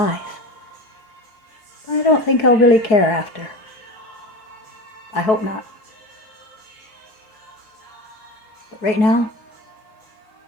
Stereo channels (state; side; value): late; right; 4.2 ms